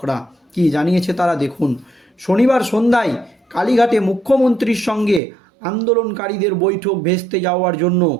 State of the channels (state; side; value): drops out; left; at 5.2 s